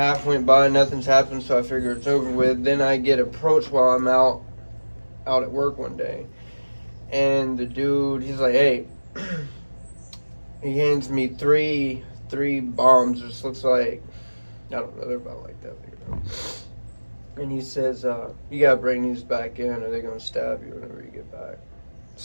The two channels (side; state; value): both; inverted; correlation -1.00